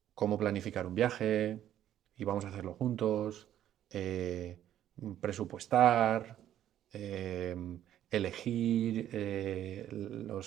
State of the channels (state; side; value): quieter; left; 11.5 dB